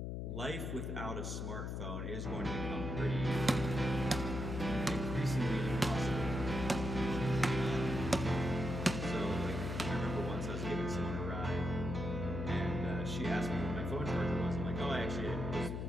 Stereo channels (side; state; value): left; noise; hum, 4 dB below the sound